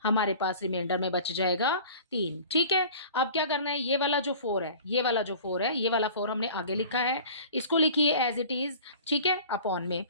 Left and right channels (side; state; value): both; inverted; correlation -0.42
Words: हमारे पास रिमाइंडर में बच जाएगा 3। ठीक है, अब क्या करना है, ये वाला जो 4 है, ये वाला जो 4 है, ये वाला 4 हमने आगे लिखा है, इसको लिखिए एज इट इज। ठीक है, अपॉन में